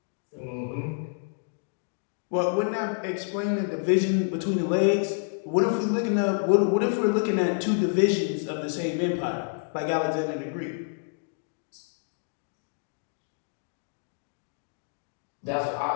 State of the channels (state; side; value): silent; right; digital silence